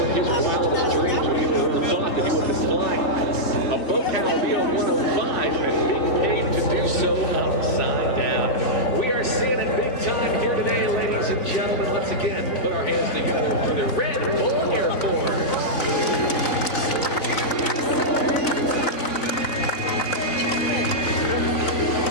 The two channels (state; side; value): late; right; 3.7 ms